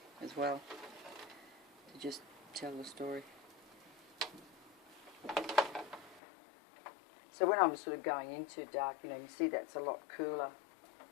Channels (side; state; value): right; drops out; at 6.2 s